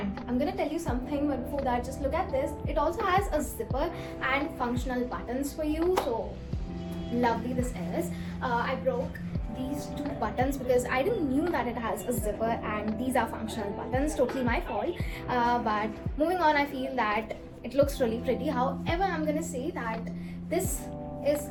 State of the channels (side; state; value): both; identical; correlation 1.00